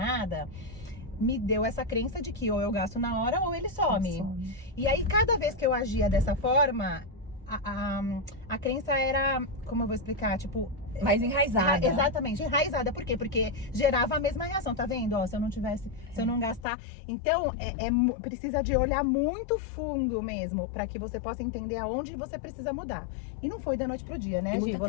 me deu essa crença de que ou eu gasto na hora ou ele some. E aí cada vez que eu agia dessa forma, a crença era, como eu vou explicar, tipo... mais enraizada. Exatamente, enraizada. Por quê? Porque gerava a mesma reação, tá vendo? Ó, se eu não tivesse, se eu não gastar. Então, precisa de olhar muito fundo mesmo, pra que você possa entender aonde você precisa mudar. E não foi da noite pro dia, né, Gi? Muita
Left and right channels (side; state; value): right; drops out; at 16.7 s